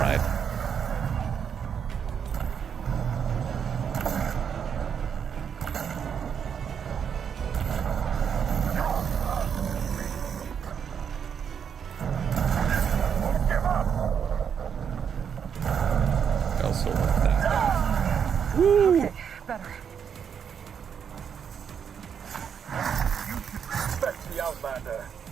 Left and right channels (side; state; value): left; quieter; 7.5 dB